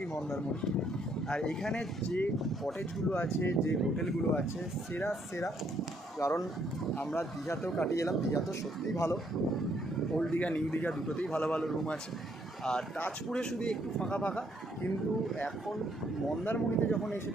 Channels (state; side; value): normal; both; correlation 0.70